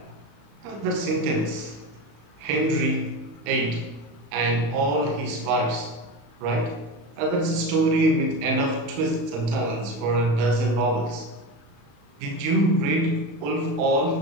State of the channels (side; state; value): left; late; 35 ms